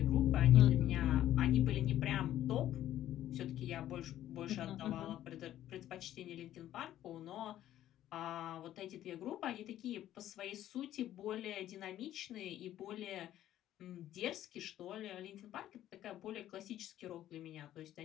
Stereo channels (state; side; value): quieter; right; 12.6 dB